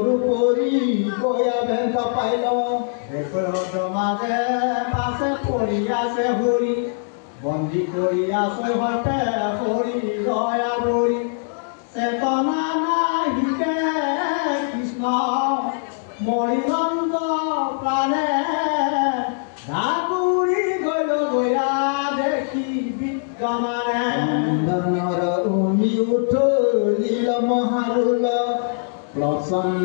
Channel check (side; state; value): right; silent; digital silence